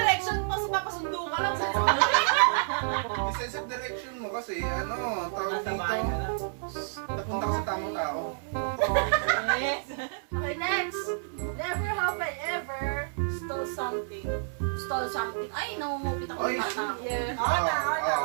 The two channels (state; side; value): silent; left; digital silence